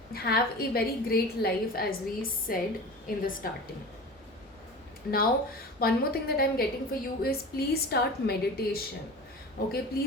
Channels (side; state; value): both; normal; correlation 0.35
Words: have a very great life as we said in the starting. Now one more thing that I am getting for you is please start meditation. Okay,